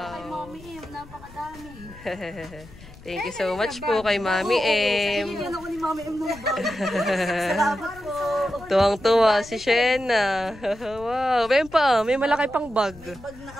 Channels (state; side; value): noise; left; rumble, 20 dB below the sound